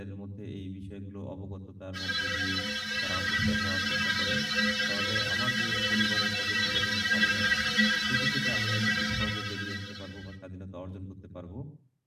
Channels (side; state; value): both; identical; correlation 1.00